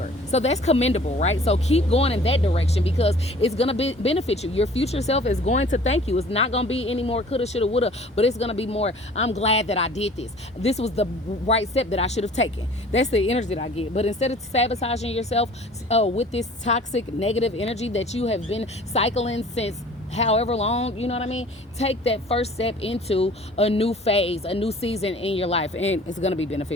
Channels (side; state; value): both; normal; correlation 0.49